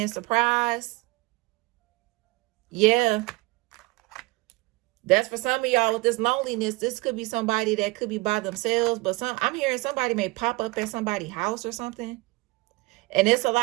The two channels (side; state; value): left; quieter; 23.4 dB